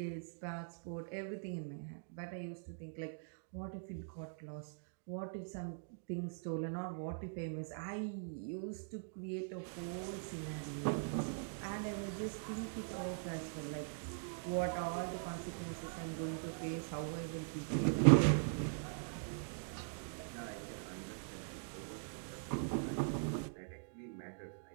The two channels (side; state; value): left; silent; digital silence